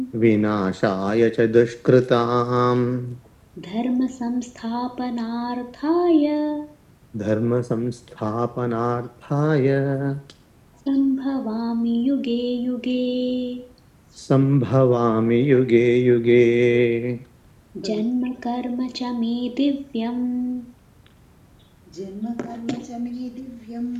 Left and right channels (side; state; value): both; identical; correlation 1.00